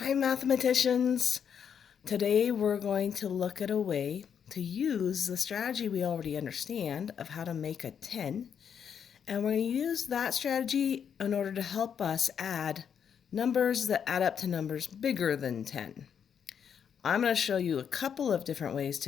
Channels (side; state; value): right; quieter; 7.7 dB